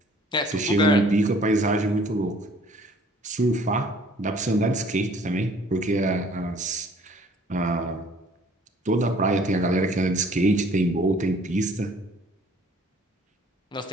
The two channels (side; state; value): both; normal; correlation 0.56